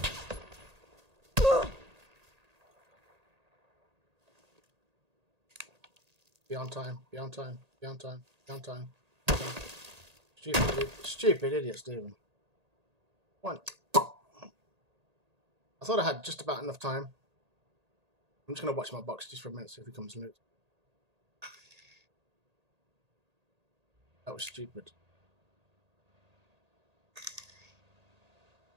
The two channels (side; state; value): left; late; 1.8 ms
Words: Be on time, be on time, be on time, be on time. Stupid idiot, Stephen. One. I thought I had just about enough time. I'm just going to watch my box just for a minute, see if he comes loose. That was stupid.